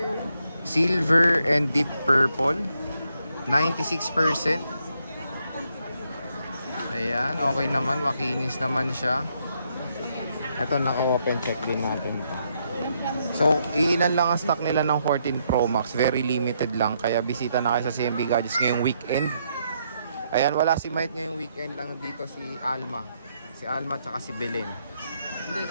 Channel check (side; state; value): both; inverted; correlation -0.76